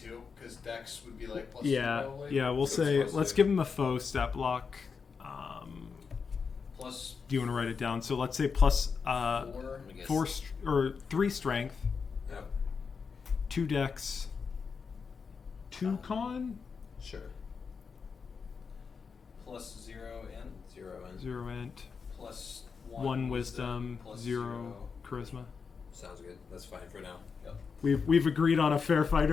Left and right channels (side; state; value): right; quieter; 5.6 dB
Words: because Dex would be like plus 2 Yeah, probably. yeah. We'll So say it's let's plus give him a faux step block. Plus Do you want to write it down? So let's say plus 4. I guess. 4 or 3 strength, Yep. 2 dex, 2 con, Sure. Plus 0 in. 0 and 0 int, Plus 1 wisdom, plus 0 charisma. sounds good. That's fine for now. Yep. We've agreed on a fair